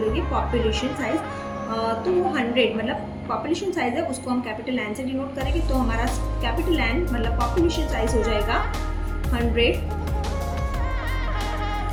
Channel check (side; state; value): both; identical; correlation 1.00